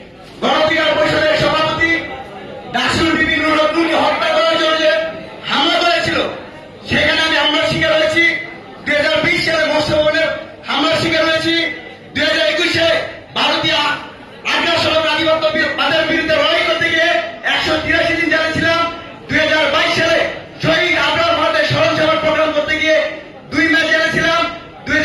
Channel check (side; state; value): both; identical; correlation 1.00